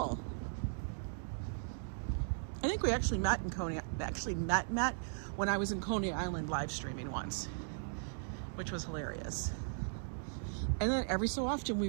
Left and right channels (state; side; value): silent; left; digital silence